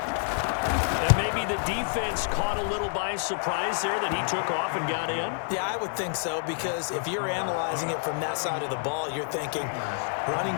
And maybe the defense caught a little by surprise there that he took off and got in? Yeah, I would think so, because if you're analyzing it from that side of the ball, you're thinking running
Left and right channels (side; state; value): right; silent; digital silence